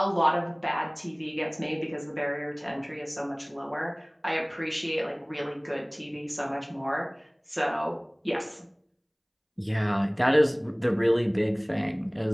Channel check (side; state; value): both; identical; correlation 1.00